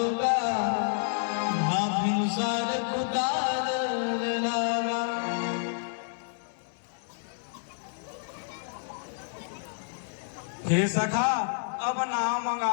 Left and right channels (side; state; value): right; silent; 58 dB below the other